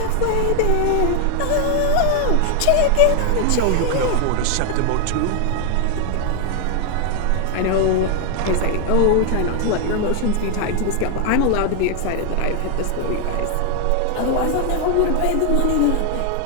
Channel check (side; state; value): both; different; correlation 0.01